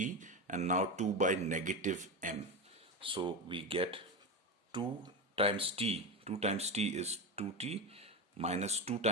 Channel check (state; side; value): normal; both; correlation 0.18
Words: and now 2 by negative m. So we get 2 times t. 2 times t is 2t minus 2